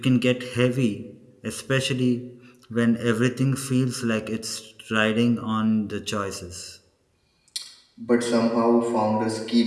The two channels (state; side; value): identical; both; correlation 1.00